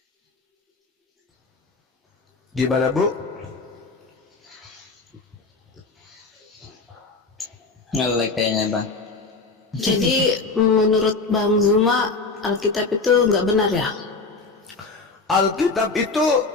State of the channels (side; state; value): right; quieter; 4.0 dB